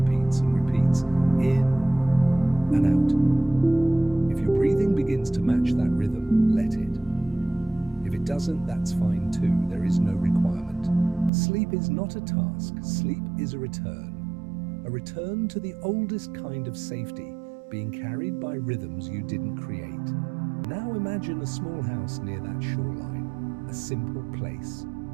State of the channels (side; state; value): left; drops out; at 11.3 s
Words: and repeats, in and out. If your breathing begins to match that rhythm, let it. If it doesn't, that's fine too. There is no requirement. Sleep is not a task. Sleep is a return to the oldest kind of safety, being carried by rhythms you didn't create. Now imagine a small house near that shoreline, a simple place,